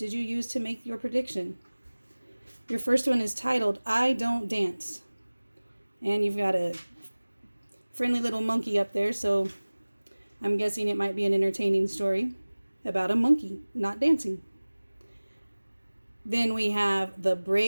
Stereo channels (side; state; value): both; inverted; correlation -1.00